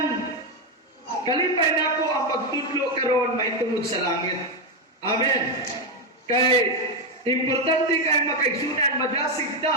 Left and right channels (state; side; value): normal; both; correlation 0.06